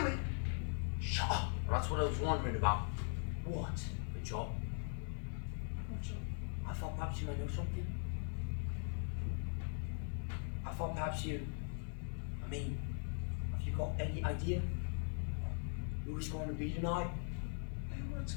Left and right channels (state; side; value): silent; right; 51 dB below the other